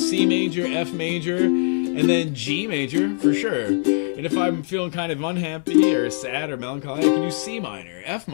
C major, F major, and then G major for sure. And if I'm feeling kind of unhappy or sad or melancholy, I can use C minor, F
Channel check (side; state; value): right; silent; 61 dB below the other